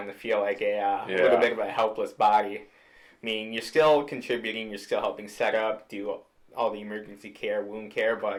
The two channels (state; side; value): identical; both; correlation 1.00